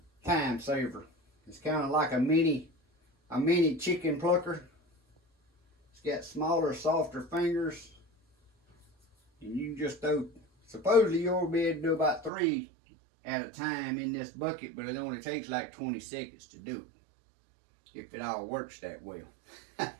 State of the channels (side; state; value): left; drops out; at 12.3 s